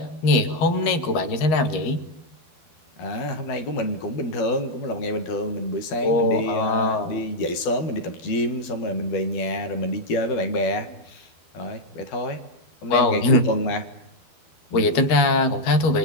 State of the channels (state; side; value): late; right; 12 ms